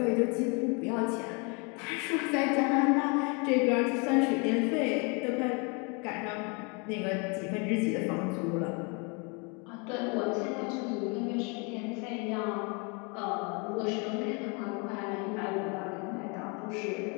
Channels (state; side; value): quieter; right; 32.8 dB